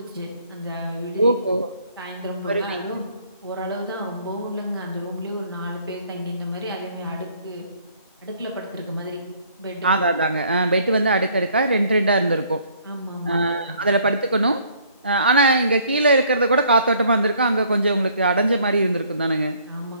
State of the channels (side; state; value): both; inverted; correlation -0.61